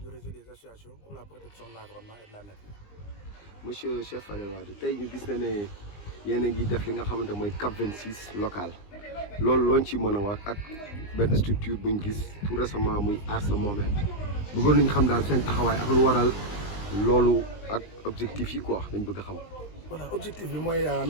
du réseau des associations pour la protection de l'environnement et de la nature. Monsieur Cheikh Fadel Wade tey ñu gis na ne yéen a ngi def li nga xamante mooy CAP 26 local loolu looñ ci mën a wax ak benn structure buñ gis tout récemment muy Aar Sa Moomeel bëggoon nañu xam daal seen taxawaay ak lu waral loolu ak objectif yi quoi dañ bëgg a xam. Voilà, objectif bi mooy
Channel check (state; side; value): late; right; 20 ms